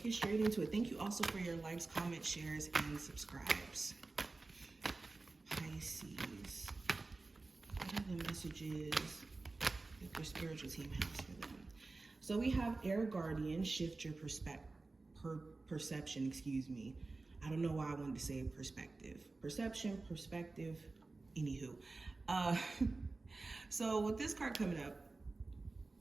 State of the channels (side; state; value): left; quieter; 3.5 dB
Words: get straight into it. Thank you also for your likes, comments, shares, and subscribes. Pisces. What are the messages that your spiritual team has for them? So we have Air Guardian, shift your perception, excuse me. I don't know why I wanted to say perspective. Perception, perspective, anywho. So with this card coming up,